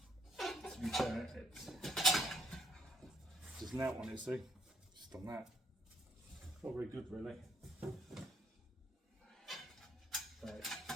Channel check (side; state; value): both; normal; correlation 0.66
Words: be fair, it's just an out on it. See, just on that. Not very good, really. Right,